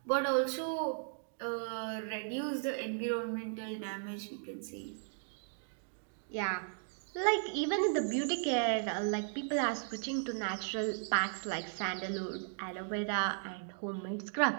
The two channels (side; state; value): left; silent; digital silence